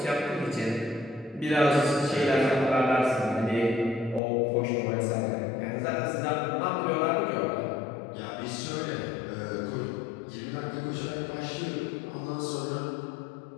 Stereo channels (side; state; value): right; drops out; at 4.2 s